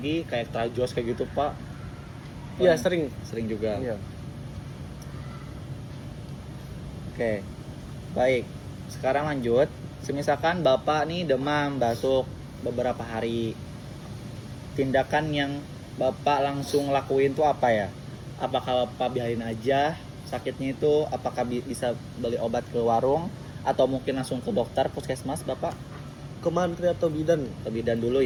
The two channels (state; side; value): identical; both; correlation 1.00